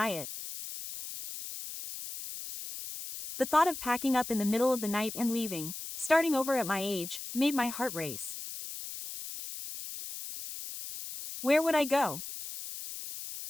it. The thought of packing up in the middle of the night and leaving, starting over at my age, made my heart race. Where would I go?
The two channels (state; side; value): noise; left; hiss, 9 dB below the sound